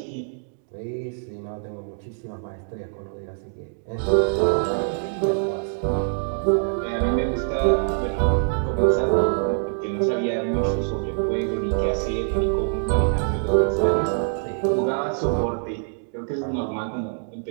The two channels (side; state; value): left; silent; digital silence